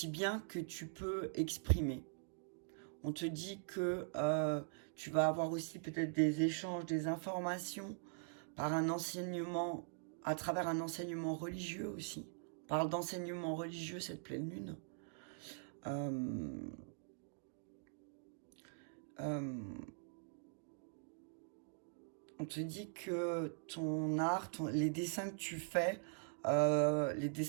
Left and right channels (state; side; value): silent; left; digital silence